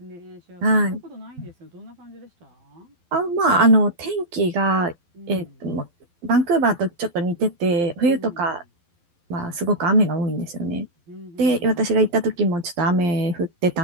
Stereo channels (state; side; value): late; left; 12 ms